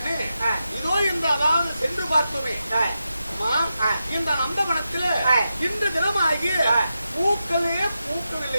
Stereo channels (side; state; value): both; inverted; correlation -0.89